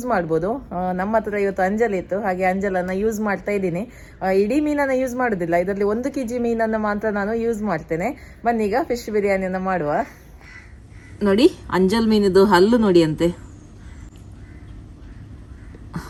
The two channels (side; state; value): both; identical; correlation 1.00